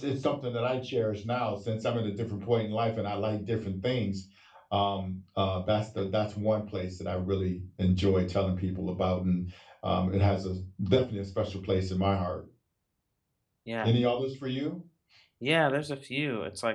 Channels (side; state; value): both; identical; correlation 1.00